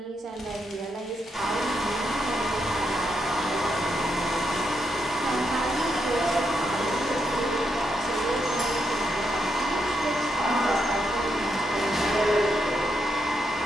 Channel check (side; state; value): both; normal; correlation 0.81